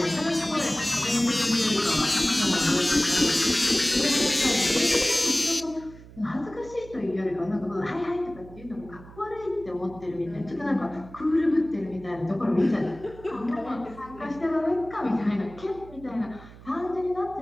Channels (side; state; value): right; noise; hum, 19 dB below the sound